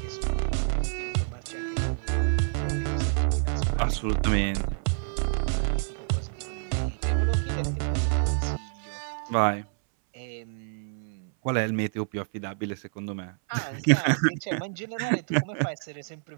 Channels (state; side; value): silent; left; 60 dB below the other